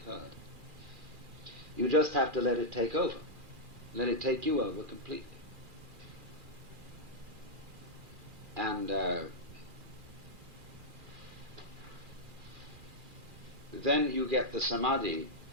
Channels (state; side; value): late; left; 2.4 ms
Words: You just have to let it take over. Let it take you over completely. And then you get the samadhi